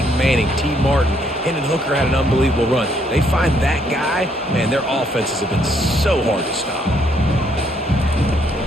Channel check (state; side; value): normal; both; correlation 0.70